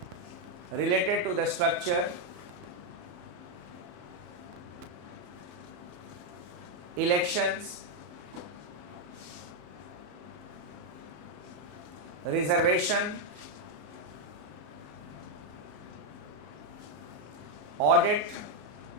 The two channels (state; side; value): late; left; 34 ms